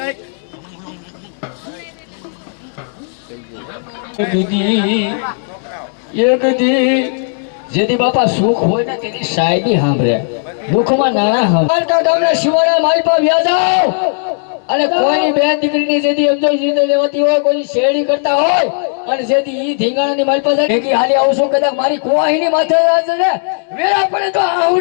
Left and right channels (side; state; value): right; silent; digital silence